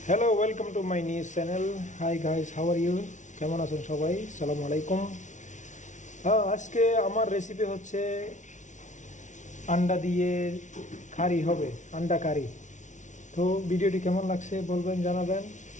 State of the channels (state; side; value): late; right; 0.36 ms